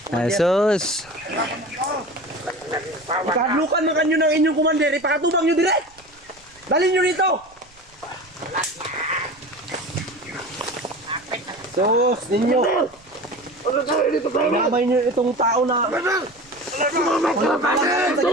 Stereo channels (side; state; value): right; noise; rumble, 29 dB below the sound